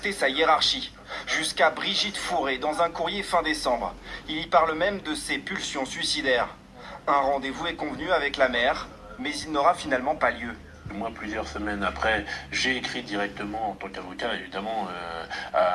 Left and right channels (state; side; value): identical; both; correlation 1.00